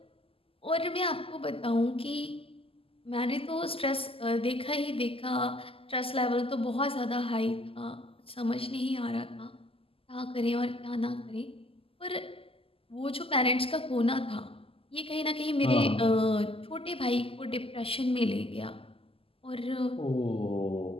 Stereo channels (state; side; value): late; right; 0.26 ms